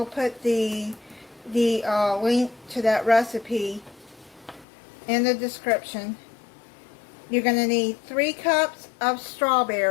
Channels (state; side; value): drops out; right; at 4.7 s